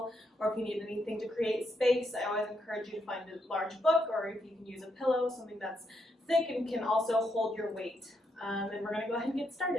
or if you need anything to create space, I always encourage you to find a large book, or if you can use a pillow, something that's thick and can also hold your weight. And we're going to go ahead and get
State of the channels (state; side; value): normal; both; correlation 0.79